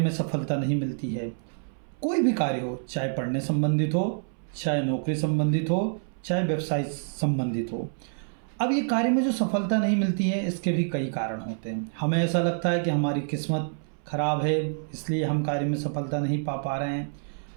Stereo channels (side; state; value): left; silent; 60 dB below the other